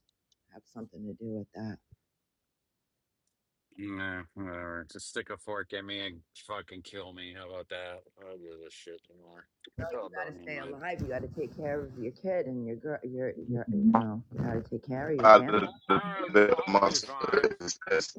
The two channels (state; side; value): identical; both; correlation 1.00